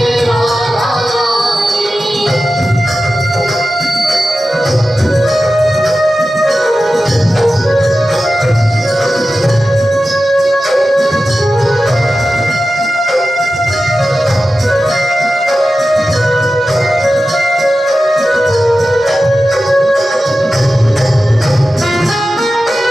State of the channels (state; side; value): normal; both; correlation 0.93